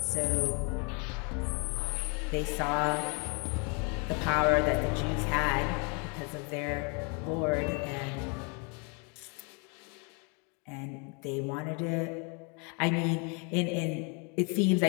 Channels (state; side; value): quieter; right; 34.6 dB